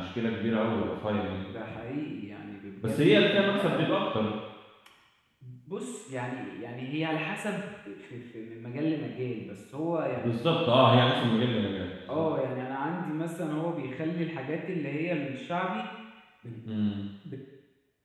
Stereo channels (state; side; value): identical; both; correlation 1.00